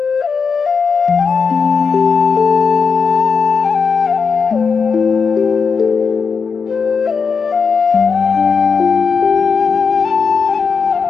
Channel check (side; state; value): right; quieter; 5.5 dB